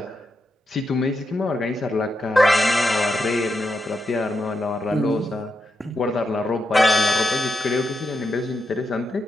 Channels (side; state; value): both; normal; correlation 0.85